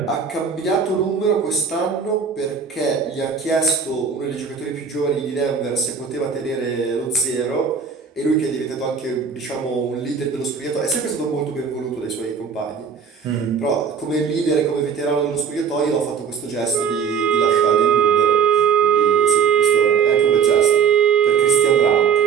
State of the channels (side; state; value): left; quieter; 6.6 dB